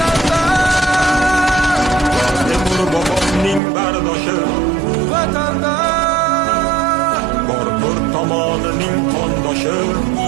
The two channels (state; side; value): drops out; left; at 3.6 s